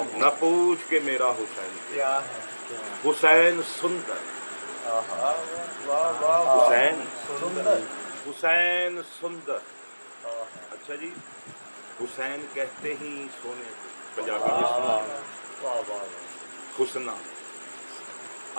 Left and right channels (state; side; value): inverted; both; correlation -1.00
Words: نہ پوچھ کے میرا حسین کیا ہے, حسین سندر, حسین حسین سندر. اچھا جی, حسین کہتے ہی سونے کو, پنجابی میں سنا حسنا,